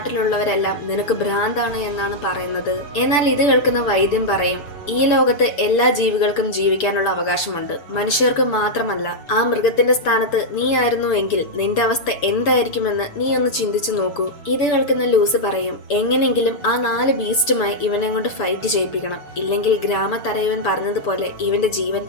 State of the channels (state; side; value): late; right; 6.9 ms